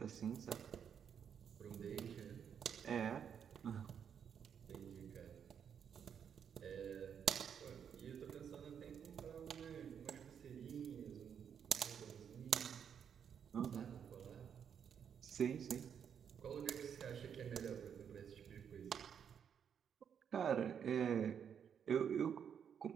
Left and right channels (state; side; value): quieter; left; 7.9 dB